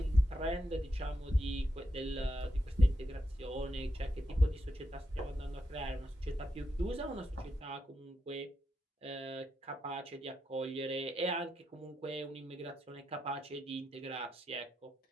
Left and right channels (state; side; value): normal; both; correlation 0.85